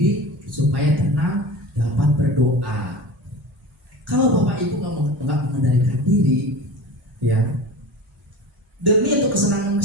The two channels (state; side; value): normal; both; correlation 0.33